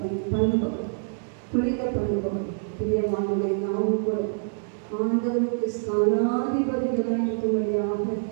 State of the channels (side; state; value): left; silent; digital silence